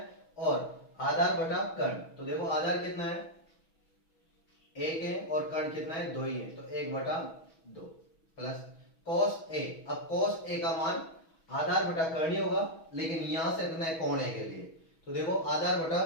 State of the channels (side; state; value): right; late; 6.2 ms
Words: और आधार बटा कर्ण। तो देखो आधार कितना है 1 है, और कर्ण कितना है 2 ही है, तो 1/2 प्लस cos a। अब cos a का मान आधार बटा कर्ण ही होगा, लेकिन यहां से रखना है कोण a के लिए। तो देखो आधार बटा